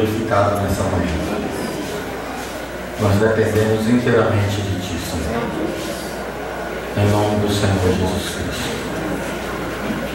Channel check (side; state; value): both; identical; correlation 1.00